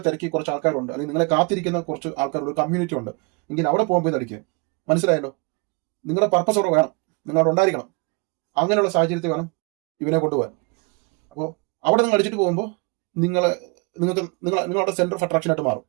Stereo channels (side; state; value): left; quieter; 31.0 dB